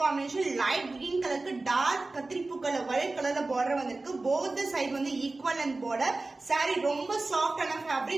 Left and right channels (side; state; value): left; quieter; 3.3 dB